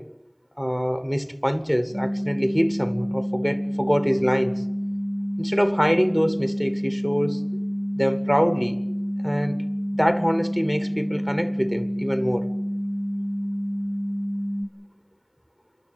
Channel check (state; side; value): identical; both; correlation 1.00